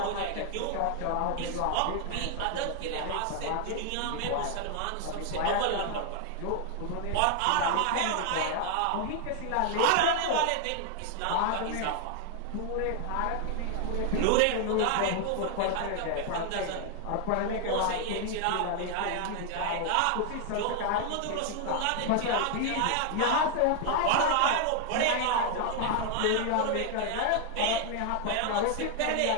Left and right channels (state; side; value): different; both; correlation 0.00